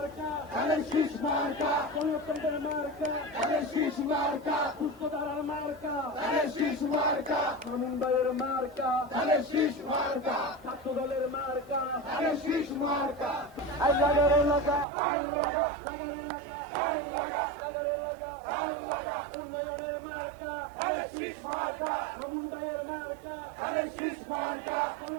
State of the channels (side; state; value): left; drops out; at 14.9 s